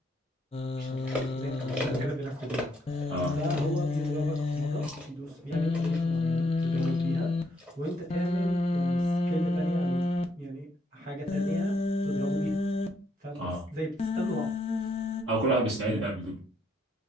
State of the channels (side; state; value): both; normal; correlation 0.73